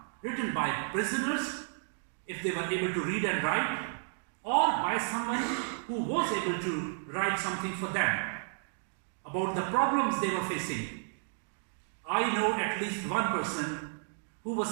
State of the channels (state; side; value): silent; left; digital silence